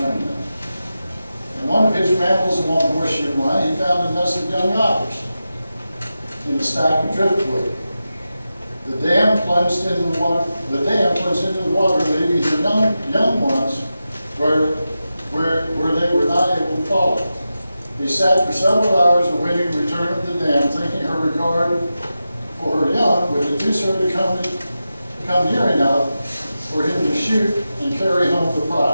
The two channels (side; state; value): both; inverted; correlation -0.92